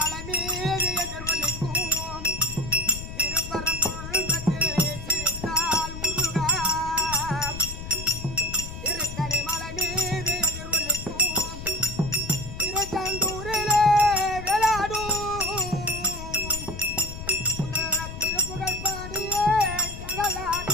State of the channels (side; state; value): left; noise; rumble, 10 dB below the sound